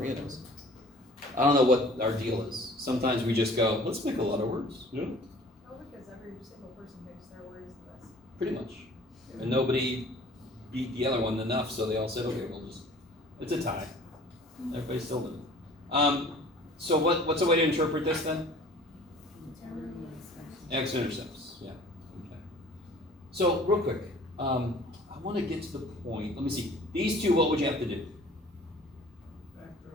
knows. I don't know what our deal is. Sometimes we just go, let's make a lot of words. You know? Oh, because every single person makes their words list. Pretty much. And nobody beat the other one enough, so they all said, okay, we'll just, it's a tie. Everybody's still living. So what's a way to interpret this then? X-intercepts, yeah. Okay. So real quick, I want to get to the point. Let me see. These two, what would you have to do?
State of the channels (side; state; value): both; normal; correlation 0.49